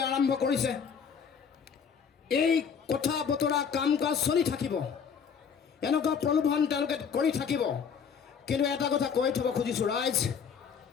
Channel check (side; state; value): right; quieter; 6.7 dB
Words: আৰম্ভ কৰিছে। এই কথা বতৰা কাম কাজ চলি থাকিব, এনেকুৱা প্ৰলোভন তেওঁলোকে কৰি থাকিব। কিন্তু এটা কথা কৈ থ'ব খুজিছোঁ ৰাইজ,